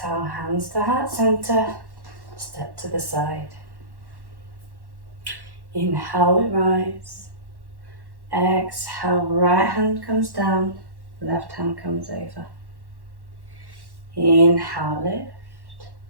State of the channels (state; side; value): late; left; 1.1 ms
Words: hands to heart center. Step to the side. Inhale, we rise. Exhale, right hand comes down. Left hand comes over. Inhale, lift.